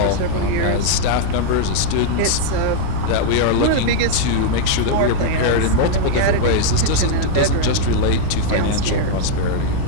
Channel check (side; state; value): both; different; correlation 0.00